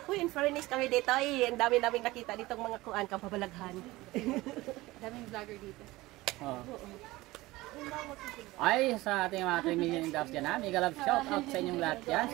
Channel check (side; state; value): left; quieter; 19.3 dB